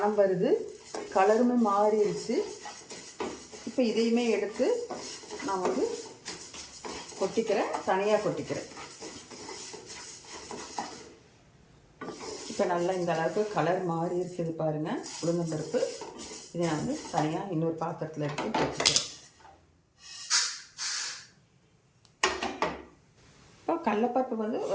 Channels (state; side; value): identical; both; correlation 1.00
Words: வருது, கலருமே மாறிடுச்சு. இப்போ இதையுமே எடுத்து நான் வந்து கொட்டிக்கிறேன், தனியாக கொட்டிக்கிறேன். இப்போ நல்லா இந்த அளவுக்கு கலர் மாறி இருக்குது பாருங்கள் உளுந்தம்பருப்பு. இதை நான் வந்து தனியாக இன்னொரு பாத்திரத்தில் எடுத்து கொட்டிக்கிறேன். இப்போ கடலைப்பருப்பு வந்து